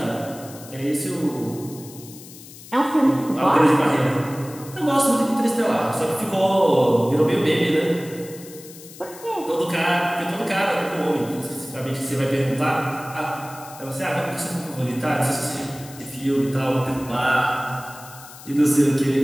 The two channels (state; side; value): noise; left; hiss, 18 dB below the sound